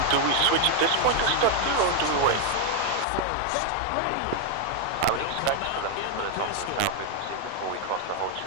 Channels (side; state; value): both; different; correlation 0.01